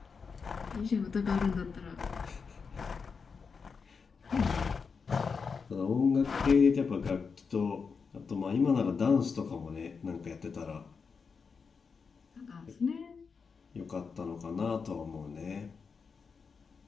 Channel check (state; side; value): quieter; right; 5.4 dB